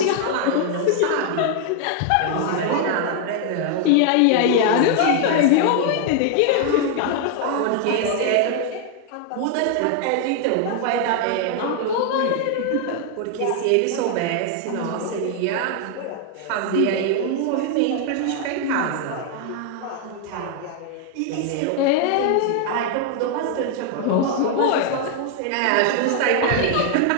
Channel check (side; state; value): both; different; correlation 0.00